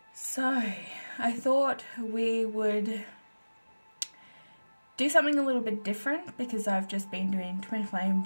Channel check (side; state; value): both; inverted; correlation -1.00